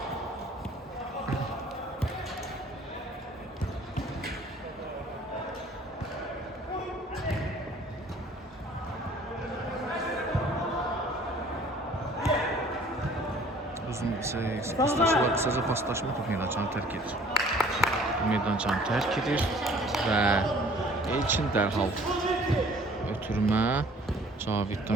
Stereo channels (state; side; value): normal; both; correlation 0.53